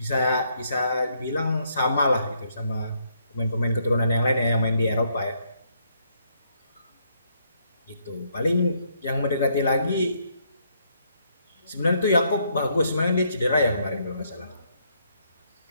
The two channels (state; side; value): inverted; both; correlation -0.73